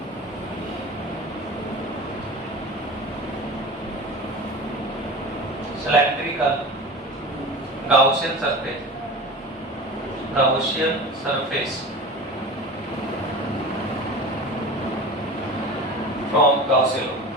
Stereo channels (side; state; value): both; normal; correlation 0.33